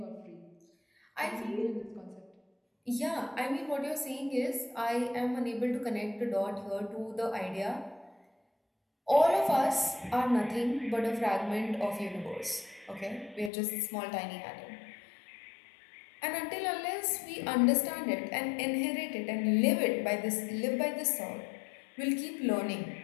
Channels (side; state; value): right; drops out; at 13.5 s